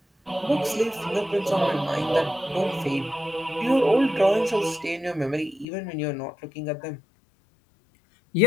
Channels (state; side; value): drops out; right; at 5.7 s